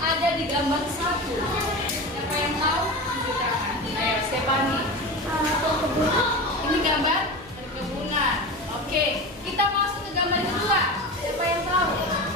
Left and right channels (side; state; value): both; normal; correlation 0.27